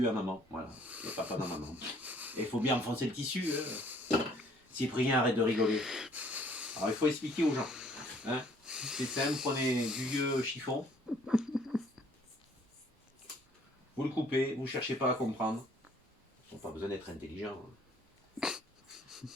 à maman. Voilà, et papa dans maman. Et il faut bien enfoncer le tissu. Cyprien, arrête de rigoler. Alors, il faut expliquer aux gens. Hein, c'est simple, prenez du vieux chiffon. Vous le coupez, vous ne cherchez pas à comprendre. Ils n'ont pas besoin d'être intelligents.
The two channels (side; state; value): both; normal; correlation 0.60